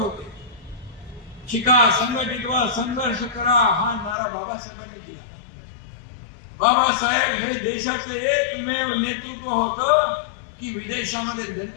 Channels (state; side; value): drops out; right; at 4.2 s